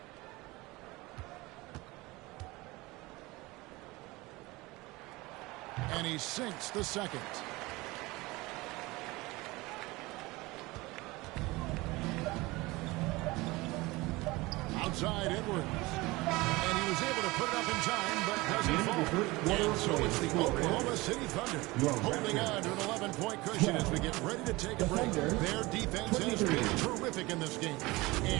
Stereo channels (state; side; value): quieter; left; 21.8 dB